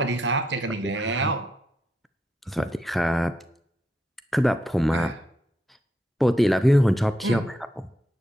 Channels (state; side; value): normal; both; correlation 0.81